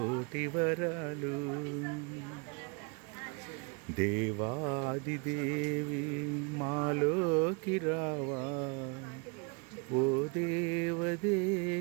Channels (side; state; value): left; quieter; 31.8 dB